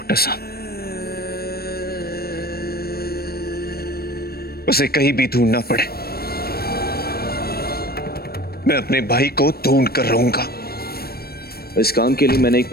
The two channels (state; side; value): late; right; 0.45 ms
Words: साहब, उसे कहीं भी ढूंढना पड़े, मैं अपने भाई को ढूंढ कर रहूंगा। इस काम के लिए मैंने एक